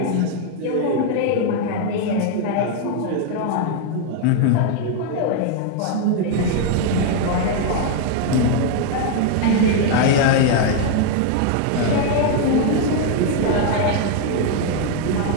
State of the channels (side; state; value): both; different; correlation 0.00